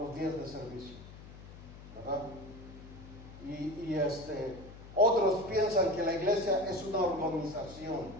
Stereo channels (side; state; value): left; noise; hum, 16 dB below the sound